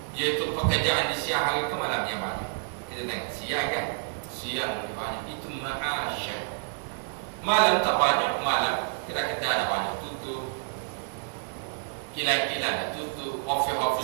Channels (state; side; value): silent; left; digital silence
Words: yaitu pekerjaan di siang hari ke malam yang banyak. Kita tengok siang kan, siang banyak, itu ma'asya. Malam tak banyak, malam kita ada banyak tutup, kilang-kilang ada tutup,